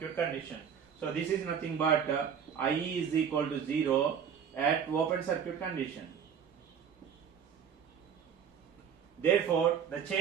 condition. So this is nothing but IE is equal to 0 at open circuit condition. Therefore, the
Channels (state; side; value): quieter; left; 7.7 dB